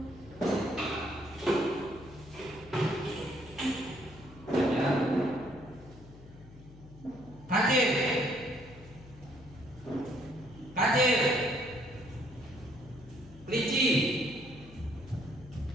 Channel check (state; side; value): noise; left; hum, 19 dB below the sound